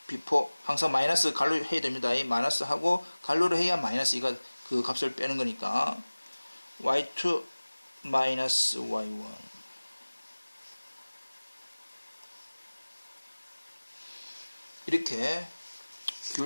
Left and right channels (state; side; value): inverted; both; correlation -1.00